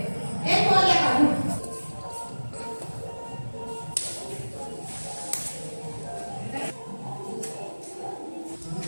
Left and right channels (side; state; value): both; inverted; correlation -1.00